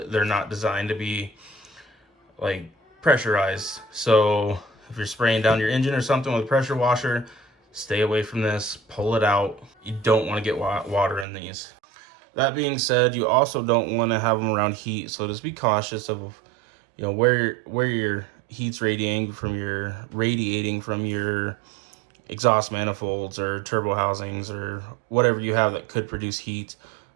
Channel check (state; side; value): drops out; left; at 11.2 s